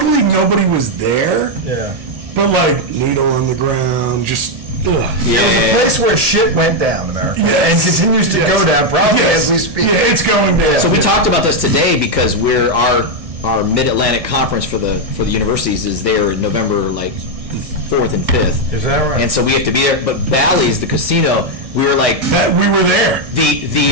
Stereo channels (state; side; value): late; left; 1.6 ms